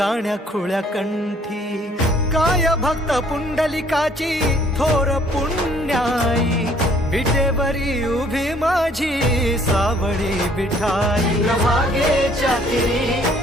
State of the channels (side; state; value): both; normal; correlation 0.60